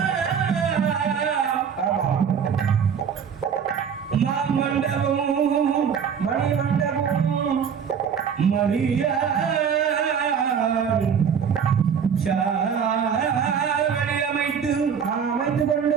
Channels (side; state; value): left; quieter; 7.2 dB